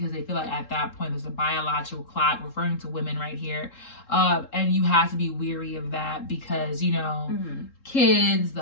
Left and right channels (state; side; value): late; right; 3.7 ms